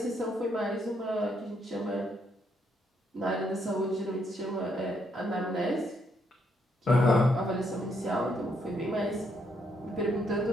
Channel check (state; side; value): normal; both; correlation 0.74